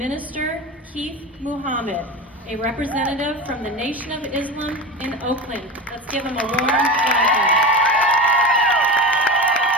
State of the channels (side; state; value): both; normal; correlation 0.26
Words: Keith Muhammad, a representative from the Nation of Islam in Oakland. Let's give him a warm welcome.